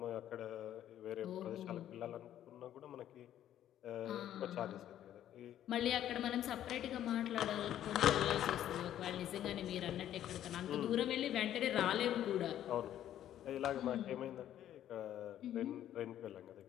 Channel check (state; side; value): quieter; right; 11.5 dB